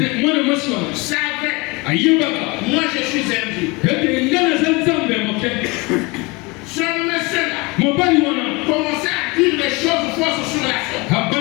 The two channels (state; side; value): quieter; right; 26.0 dB